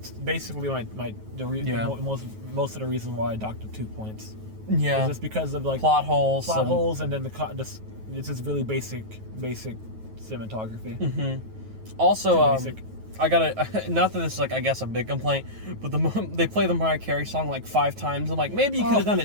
basically most of the reason why I docked it 2 points. Yeah, it's just because of like plot holes, and then it's just really basic cinematography. Also, I gotta not that this is like I guess a big complaint, but they play the Mariah Carey song like 5 times. I'm like, maybe you could have done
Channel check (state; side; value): late; left; 9.3 ms